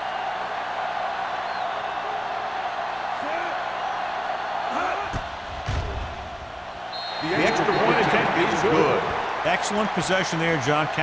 The extra point attempt is good. Excellent possession there, John,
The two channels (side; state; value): both; identical; correlation 1.00